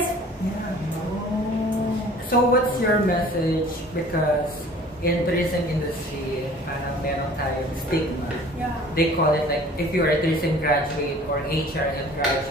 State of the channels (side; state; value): both; normal; correlation 0.48